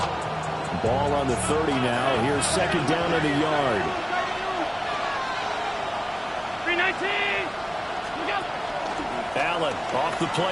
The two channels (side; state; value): both; identical; correlation 1.00